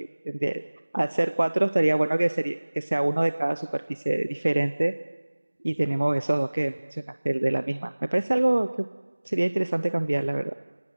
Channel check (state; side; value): inverted; both; correlation -1.00